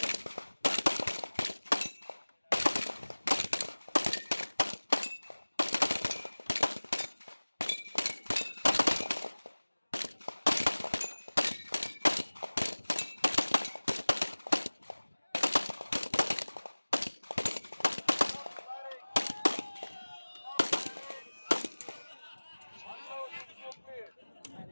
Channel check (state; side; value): inverted; both; correlation -1.00